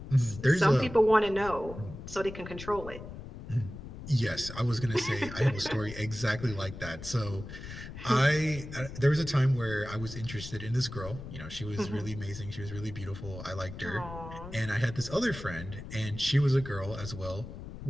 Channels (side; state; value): left; noise; rumble, 11 dB below the sound